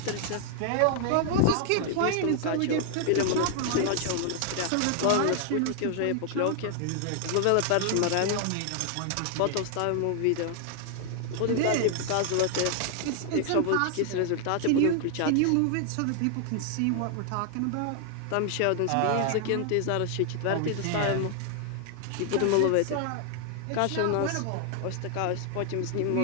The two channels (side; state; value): both; different; correlation 0.00